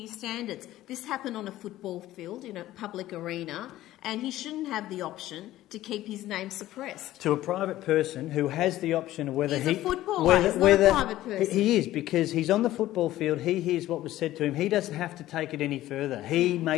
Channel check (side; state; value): right; quieter; 14.9 dB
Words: standards. This happened on a football field in a public arena, and he shouldn't have the option to keep his name suppressed. To a private person who has the option of whether he's a footballer. He's not a private person. He is, because he's on the football field. He hears what was said to him. He doesn't have to take it any further. He